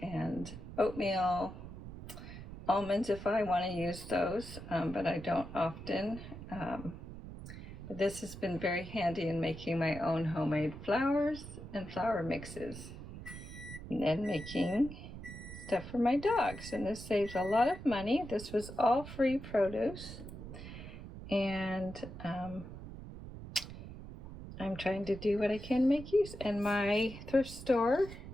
and oatmeal, almonds if I want to use those, but I don't often. But this has been very handy in making my own homemade flours and flour mixes, and then making stuff for my dogs. And this saves a lot of money. This was all free produce, and I'm trying to do what I can make use. And my thrift store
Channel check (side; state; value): right; noise; rumble, 12 dB below the sound